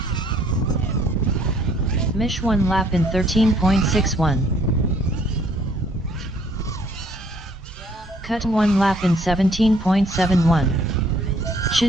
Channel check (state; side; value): normal; both; correlation 0.62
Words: Mish 1 lap in 13.61. Cut 1 lap in 17.71.